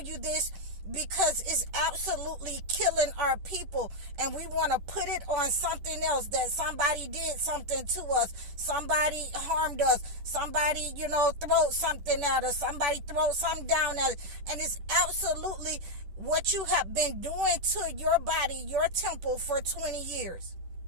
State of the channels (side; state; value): left; late; 10 ms